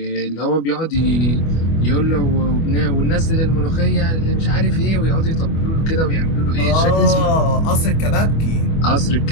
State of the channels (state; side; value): late; right; 25 ms